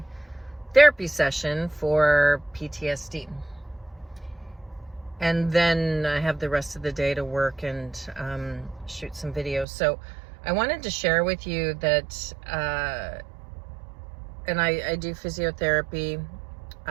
therapy session for PTSD. And then I have the rest of the day to work and shoot some videos. So I wanted to share with you that, and I do physiotherapy.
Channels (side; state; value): left; drops out; at 9.7 s